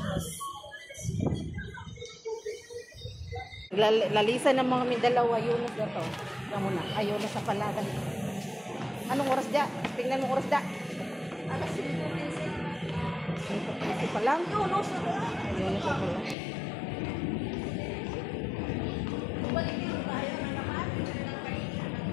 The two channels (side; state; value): right; drops out; at 16.4 s